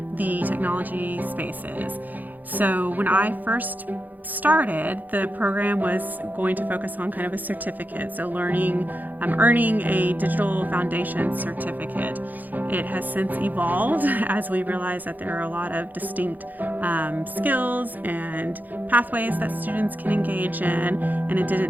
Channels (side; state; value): left; late; 0.084 ms